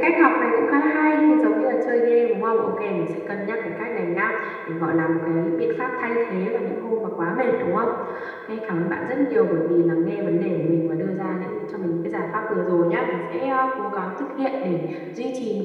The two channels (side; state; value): both; identical; correlation 1.00